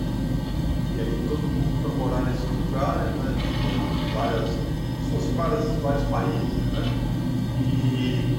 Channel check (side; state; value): both; identical; correlation 1.00